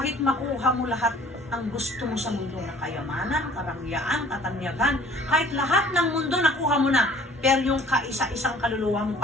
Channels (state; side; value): normal; both; correlation 0.53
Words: makuha mo lahat ang gusto mo sa mundo na kayamanan, karangyaan, katanyagan, kahit lahat ng mundo nakuha mo na, pero yung kaisa-isang kaluluwa mo